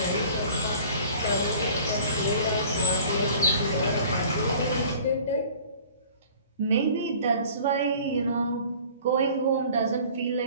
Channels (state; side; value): inverted; both; correlation -0.48